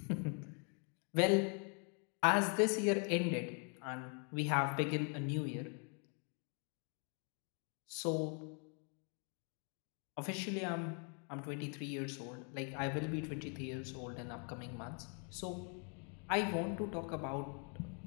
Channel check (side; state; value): right; quieter; 39.6 dB